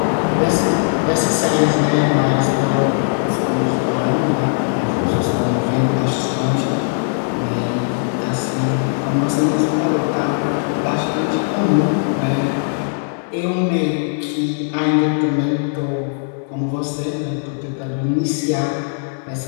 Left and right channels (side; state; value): right; silent; digital silence